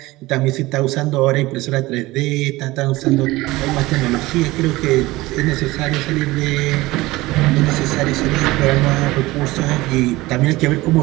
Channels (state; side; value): quieter; left; 19.5 dB